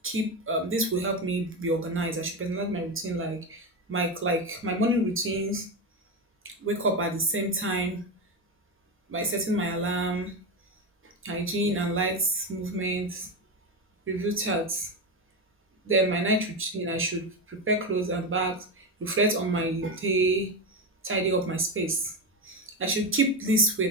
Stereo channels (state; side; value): normal; both; correlation 0.15